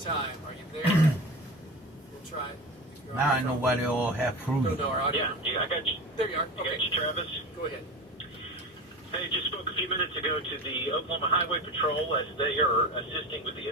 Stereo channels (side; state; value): both; normal; correlation 0.29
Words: Are you there? We'll try it. If you're on Now the I know phone. why they all have fruit. No, no, our audio. Yeah, I got you. There you are. I got Okay, you, Travis. go ahead. Hey, just spoke a few minutes ago to the Oklahoma Highway Patrol as they are assisting with the